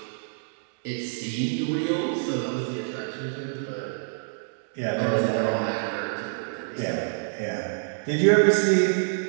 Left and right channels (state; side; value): silent; left; digital silence